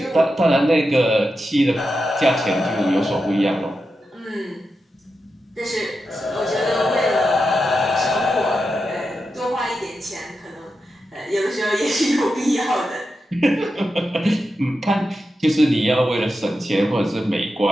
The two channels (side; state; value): both; normal; correlation 0.89